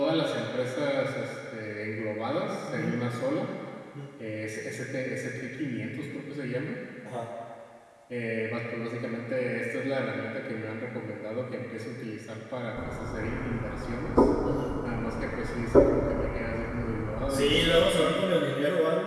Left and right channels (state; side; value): identical; both; correlation 1.00